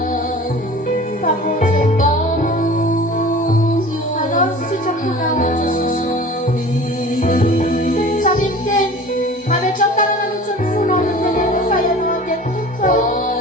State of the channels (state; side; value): normal; both; correlation 0.41